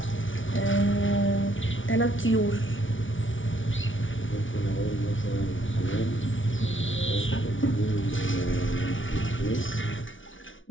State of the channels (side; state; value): right; late; 0.56 ms